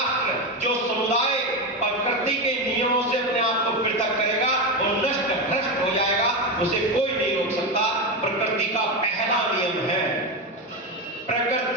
जो समुदाय प्रकृति के नियमों से अपने आप को पृथक करेगा वो नष्ट भ्रष्ट हो जाएगा, उसे कोई नहीं रोक सकता। प्रकृति का पहला नियम है,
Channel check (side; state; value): both; normal; correlation 0.14